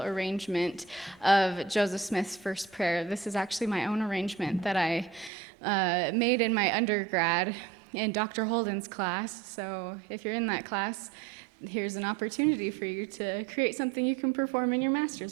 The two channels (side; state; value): left; drops out; at 5.3 s